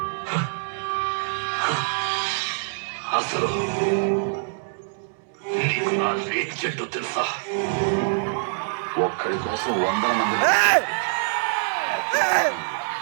అసలు నీకు నా రేంజ్ ఏంటో తెలుసా? ఒక్కడి కోసం 100 మంది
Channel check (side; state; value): left; silent; 62 dB below the other